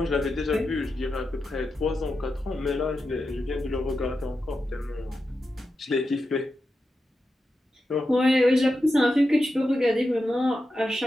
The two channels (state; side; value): normal; both; correlation 0.89